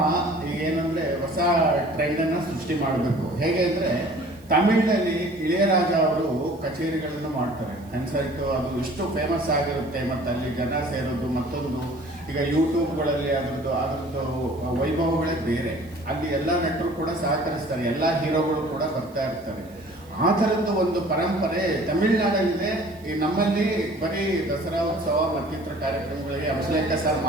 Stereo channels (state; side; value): noise; right; hiss, 28 dB below the sound